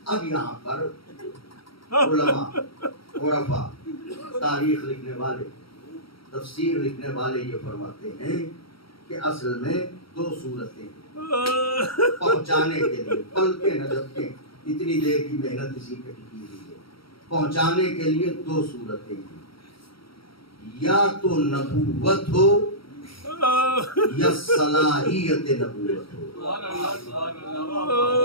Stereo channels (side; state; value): right; late; 0.74 ms